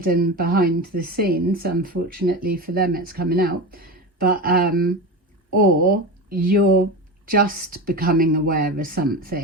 behind the scenes. Unfortunately for them, it's coming out. But or you're just becoming aware of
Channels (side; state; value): both; normal; correlation 0.23